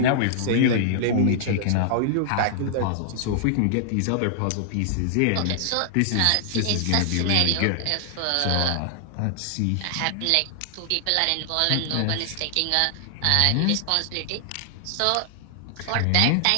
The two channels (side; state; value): both; different; correlation -0.01